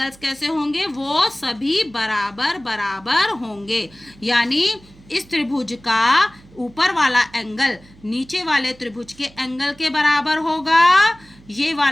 कैसे होंगे, वो सभी बराबर बराबर होंगे। यानी इस त्रिभुज का ऊपर वाला एंगल नीचे वाले त्रिभुज के एंगल के बराबर होगा, ये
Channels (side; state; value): right; noise; hum, 25 dB below the sound